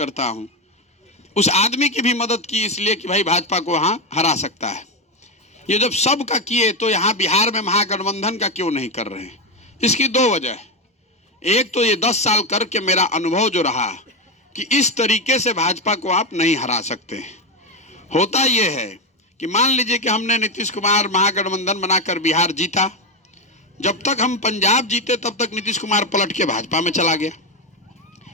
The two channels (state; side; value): normal; both; correlation 0.10